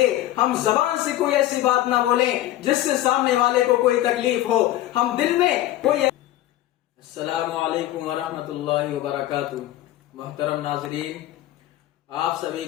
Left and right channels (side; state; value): right; quieter; 14.4 dB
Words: ہم زبان سے کوئی ایسی بات نہ بولیں جس سے سامنے والے کو کوئی تکلیف ہو، ہم دل میں کوئی۔ السلام علیکم ورحمۃ اللہ وبرکاتہ۔ محترم ناظرین، آپ سبھی